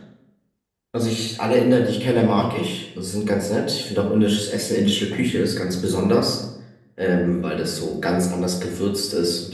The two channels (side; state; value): both; identical; correlation 1.00